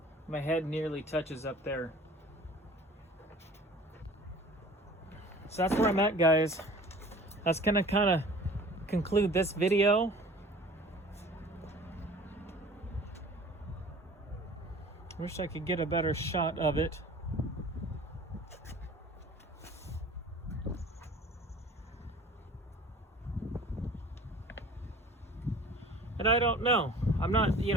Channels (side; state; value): both; normal; correlation 0.46